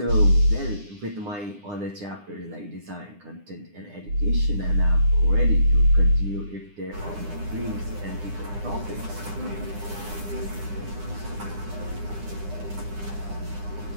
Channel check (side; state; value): left; late; 9.8 ms